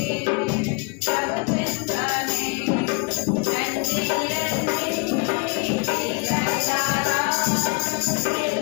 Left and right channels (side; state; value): right; quieter; 31.5 dB